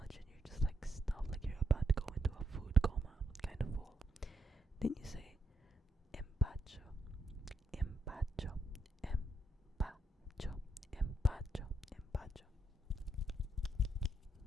and you're just like stuffed, like you're about to go into a food coma kind of full, then you say empacho, empacho, empacho, empacho, empacho.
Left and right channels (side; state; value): both; normal; correlation 0.81